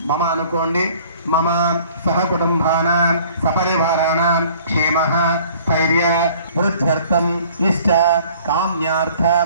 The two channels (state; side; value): inverted; both; correlation -0.53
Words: మమ అనుకోండి మమ సహ కుటుంబానాం సపరివారాణాం క్షేమః స్థైర్య వృద్ధ్యర్థం ఇష్ట కామ్యార్థ